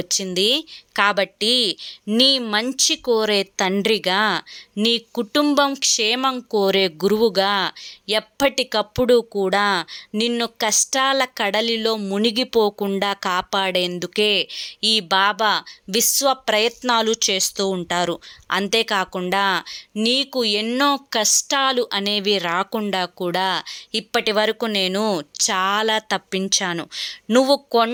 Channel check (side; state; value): both; identical; correlation 1.00